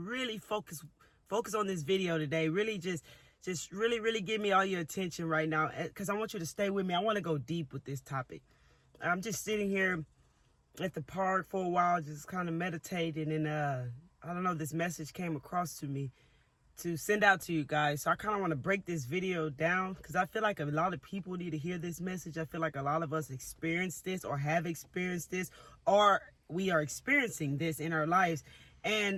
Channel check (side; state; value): both; identical; correlation 1.00